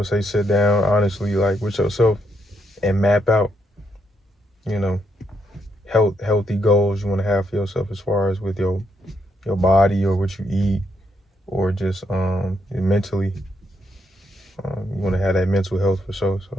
say sit down honestly, like, with yourself, and map out you know, healthy goals you want to have for yourself as far as with your body or what you eat, or just mentally. You want to have that mental health for sure.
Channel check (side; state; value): both; normal; correlation 0.77